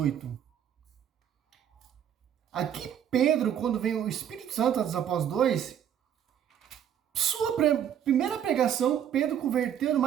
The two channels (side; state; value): left; quieter; 9.5 dB